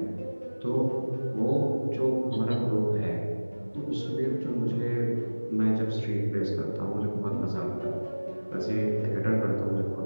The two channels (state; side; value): inverted; both; correlation -1.00